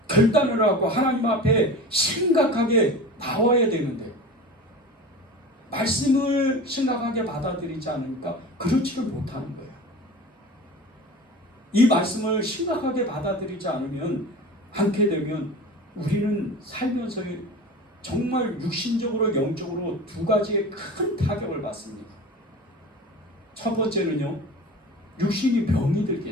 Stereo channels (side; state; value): both; normal; correlation 0.34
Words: 결단을 하고 하나님 앞에 심각하게 나와야 되는데, 말씀을 심각하게 받아들이지 않으니까 그렇지를 못하는 거예요. 이 말씀을 심각하게 받아들이지 않게 되면 우리는 살면서 정말 육신적으로 영적으로 두 가지의 큰 타격을 받습니다. 첫 번째는요, 육신이 병이